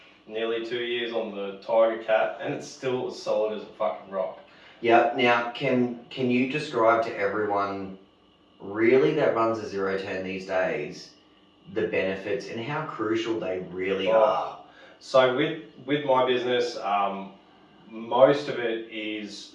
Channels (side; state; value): both; identical; correlation 1.00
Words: nearly 2 years on the Tiger Cat, and it's still as solid as a fucking rock. Yeah. Now, can you describe to everyone really that runs a 0-10 these days the benefits and how crucial they really are? So with my business, most of it is